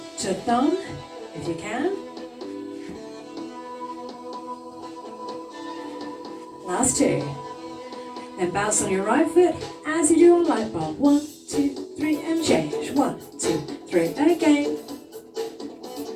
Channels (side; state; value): both; identical; correlation 1.00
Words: to thumb, if you can. Last 2. Then bounce on your right foot as you do on light bulb. 1, 2, 3, and change. 1, 2, 3, again.